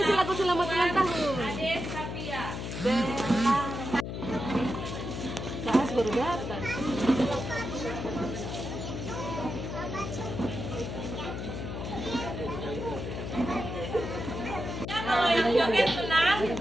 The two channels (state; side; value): noise; left; hum, 5 dB below the sound